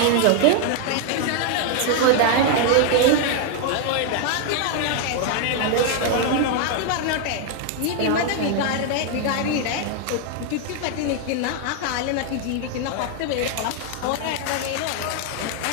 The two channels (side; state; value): both; different; correlation 0.00